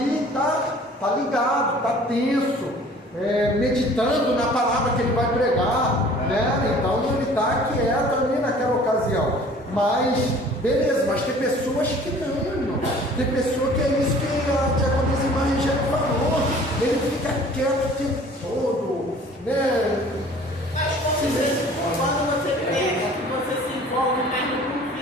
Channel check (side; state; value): both; normal; correlation 0.49